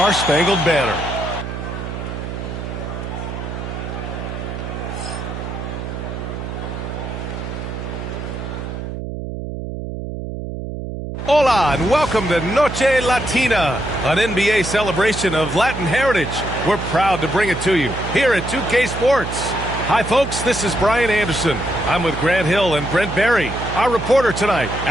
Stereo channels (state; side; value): noise; right; hum, 7 dB below the sound